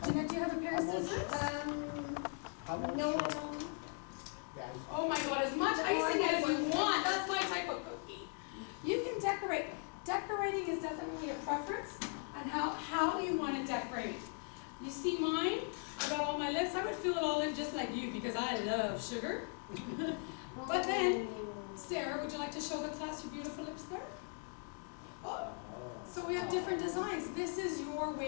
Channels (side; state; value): right; quieter; 38.4 dB